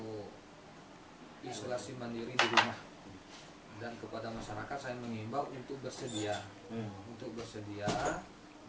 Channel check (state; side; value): identical; both; correlation 1.00